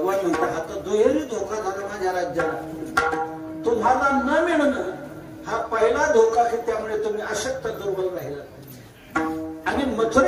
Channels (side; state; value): both; identical; correlation 1.00